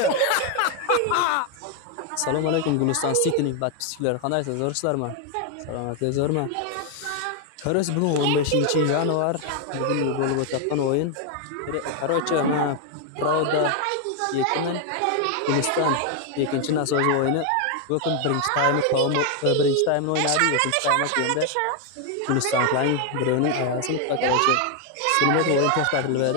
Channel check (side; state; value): both; different; correlation 0.00